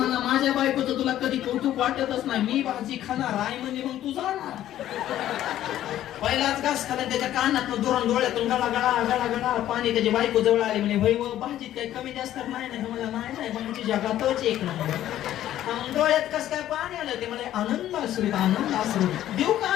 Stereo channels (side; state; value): right; quieter; 12.6 dB